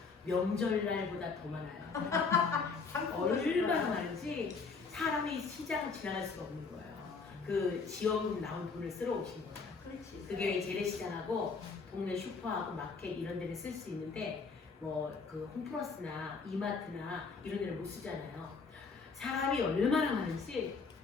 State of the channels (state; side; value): quieter; right; 4.8 dB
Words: 명절날보다 더 많아요. 얼마나 많은지 사람이 시장을 지나갈 수가 없는 거예요. 그 지원금 나온 돈을 쓰러 오신 거예요. 그게 재래시장하고 동네 슈퍼하고 마켓 이런 데를 쓸 수 있는데 뭐 그 홈플러스나 이마트나 이런 데를 못 쓰잖아요. 사람이 얼마나 많은지